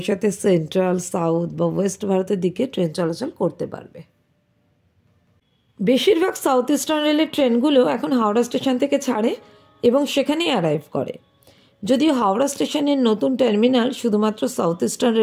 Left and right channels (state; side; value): identical; both; correlation 1.00